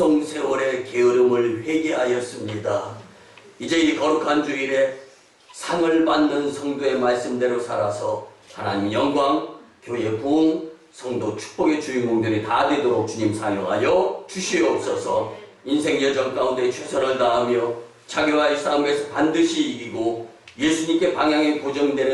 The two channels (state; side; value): identical; both; correlation 1.00